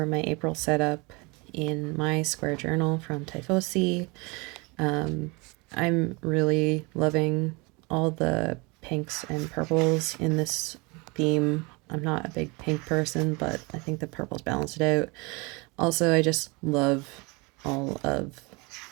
my April setup in my square journal from Tiefossi. I'm really loving all the pinks and purples in this theme. I'm not a big pink person, but I think the purples balance it out. Also, I just love all of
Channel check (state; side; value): quieter; left; 27.6 dB